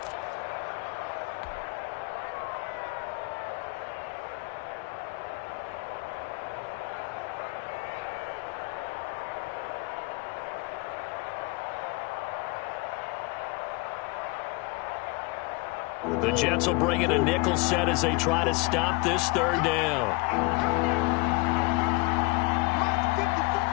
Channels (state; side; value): quieter; right; 25.9 dB